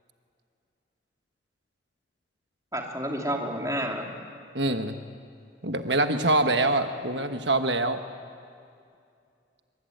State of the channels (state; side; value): normal; both; correlation -0.17